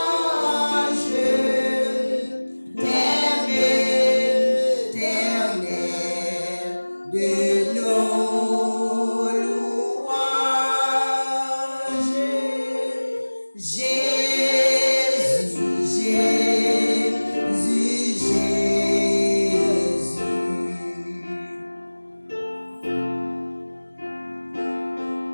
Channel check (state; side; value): inverted; both; correlation -1.00